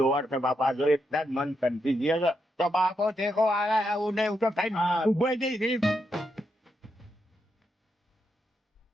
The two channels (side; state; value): both; normal; correlation 0.82